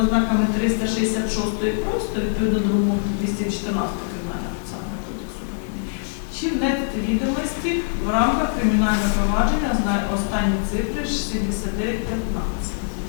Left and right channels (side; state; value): right; silent; 64 dB below the other